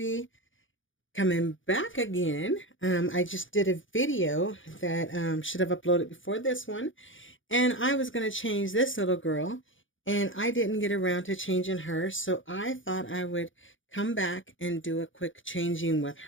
coming back again. I just did a video that should have uploaded before this one, and I was going to change this little girl, and I didn't get around to changing her, so I thought I would come back and do a quick changing with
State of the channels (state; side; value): late; right; 0.57 ms